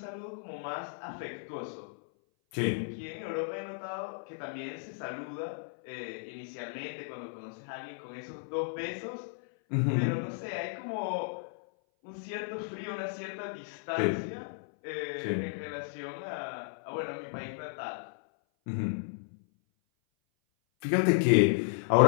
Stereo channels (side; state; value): right; silent; 55 dB below the other